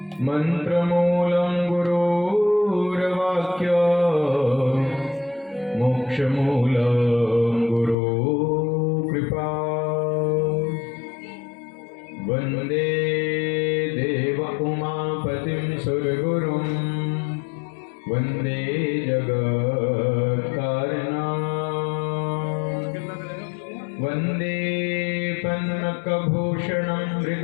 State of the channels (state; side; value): drops out; right; at 8.0 s